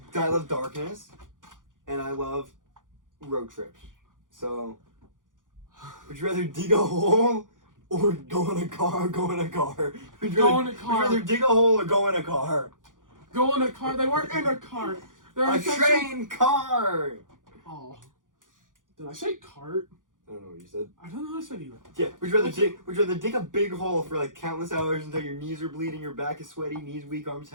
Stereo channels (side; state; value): left; late; 0.88 ms